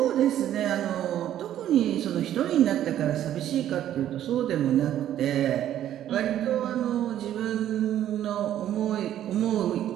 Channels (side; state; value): left; quieter; 11.6 dB